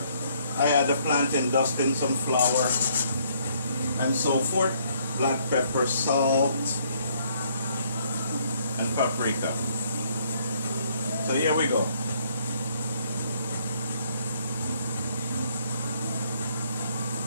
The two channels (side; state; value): both; inverted; correlation -0.66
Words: I had the plantain dust in some flour and so forth. Black pepper, salt, and paprika. So here we go.